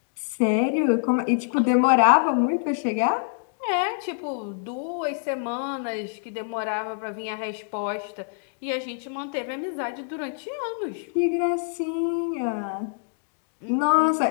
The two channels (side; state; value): right; silent; digital silence